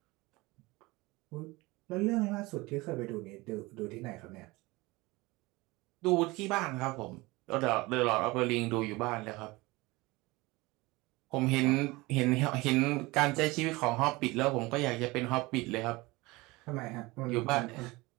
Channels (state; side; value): quieter; left; 22.2 dB